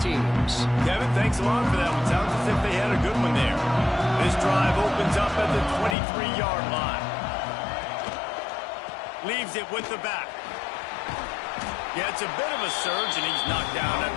teams. Kevin, thanks a lot for that one. Sounds as if they had a good one there. This drive opens up at the 23-yard line. Leaves it with the back. Yeah, it's a bit of a surge, and he's knocked down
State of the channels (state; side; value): drops out; right; at 6.0 s